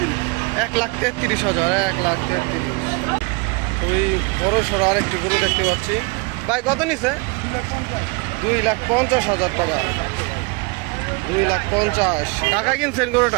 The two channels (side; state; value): left; quieter; 29.2 dB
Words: 1,33,000। 1,33,000। ওই বড় সড়ো আরেকটি গরু দেখতে পাচ্ছি। ভাই কত নিচ্ছে? 2,50,000 টাকা। 2,50,000 টাকা কিনছেন